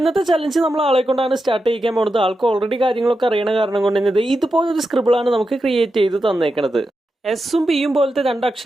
ചലഞ്ച് നമ്മൾ ആളെ കൊണ്ടാണ് സ്റ്റാർട്ട് ചെയ്യിക്കാൻ പോകുന്നത്. ആൾക്ക് ഓൾറെഡി കാര്യങ്ങളൊക്കെ അറിയണ കാരണം കൊണ്ട് തന്നെ ഇതുപോലൊരു സ്ക്രിബിളാണ് നമുക്ക് ക്രിയേറ്റ് ചെയ്ത് തന്നേക്കണത്. എസും പിയും പോലത്തെ രണ്ട്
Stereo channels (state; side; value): normal; both; correlation 0.89